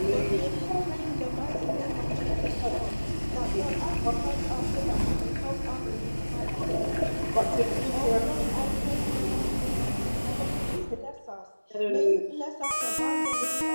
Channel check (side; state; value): both; inverted; correlation -1.00